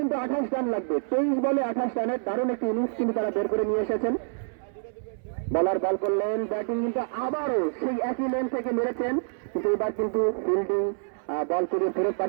কিন্তু 28 রান লাগবে। 23 বলে 28 রানের দারুণ একটি ইনিংস কিন্তু তারা বের করে নিয়ে এসেছেন। বলার বল করলেন, ব্যাটিং কিন্তু আবারও সেই একই লেন থেকে মেরেছেন, কিন্তু এবার কিন্তু ফিল্ডিং বল করে ফেরত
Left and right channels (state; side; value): silent; left; 60 dB below the other